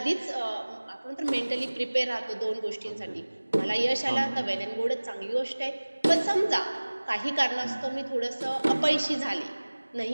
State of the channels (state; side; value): inverted; both; correlation -1.00